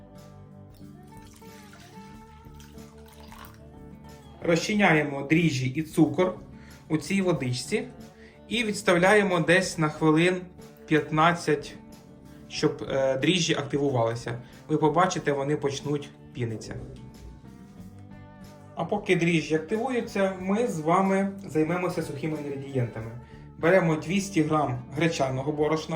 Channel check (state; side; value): identical; both; correlation 1.00